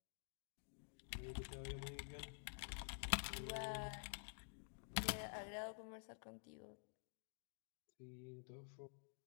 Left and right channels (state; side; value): silent; right; digital silence